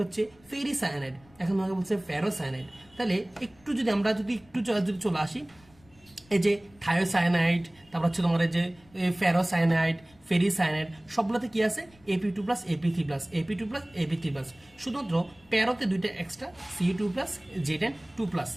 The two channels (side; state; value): left; noise; rumble, 28 dB below the sound